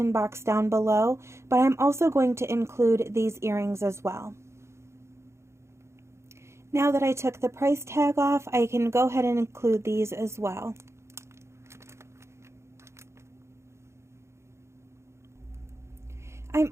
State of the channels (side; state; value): left; late; 0.13 ms